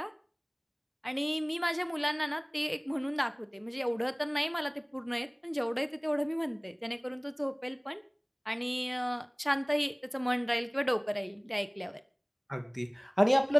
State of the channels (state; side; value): identical; both; correlation 1.00